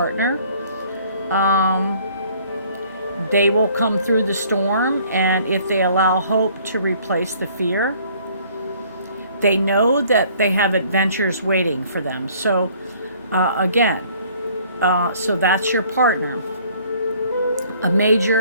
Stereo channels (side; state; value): both; inverted; correlation -0.58